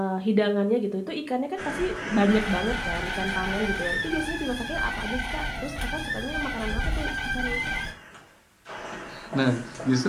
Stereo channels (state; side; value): identical; both; correlation 1.00